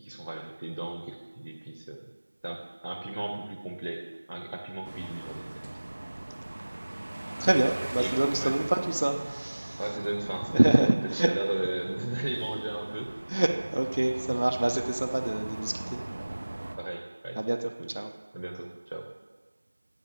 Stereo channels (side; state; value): both; inverted; correlation -1.00